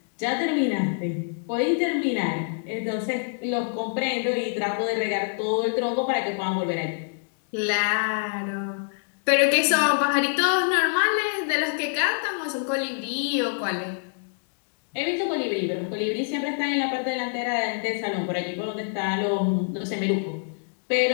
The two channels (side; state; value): right; silent; digital silence